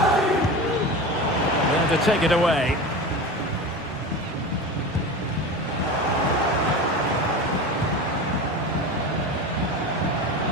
There to take it away.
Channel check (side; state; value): both; normal; correlation 0.28